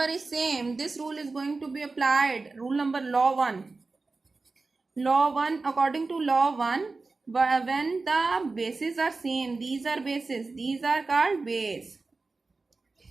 is same. This rule is going to be applied. Rule number law 1. Law 1, according to law 1, when the bases are same, these are bases, these are called base.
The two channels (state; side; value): quieter; left; 3.8 dB